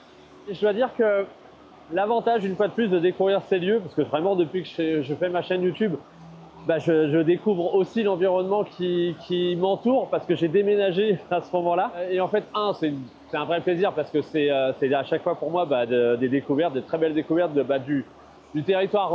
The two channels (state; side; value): identical; both; correlation 1.00